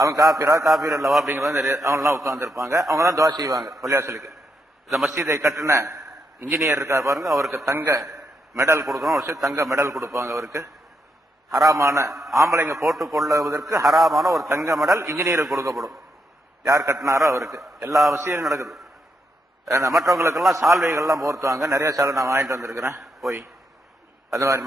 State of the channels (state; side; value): normal; both; correlation 0.80